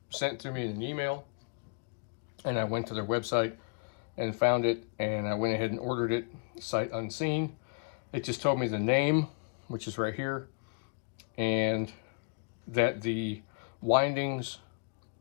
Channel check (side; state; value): right; quieter; 37.7 dB